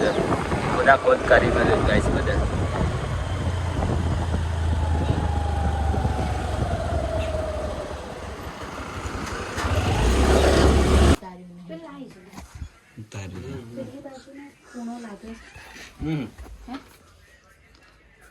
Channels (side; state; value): both; identical; correlation 1.00